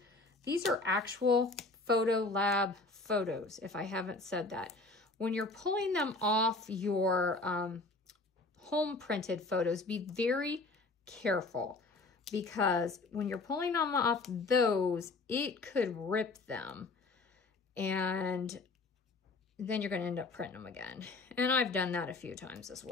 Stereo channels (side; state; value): right; quieter; 3.4 dB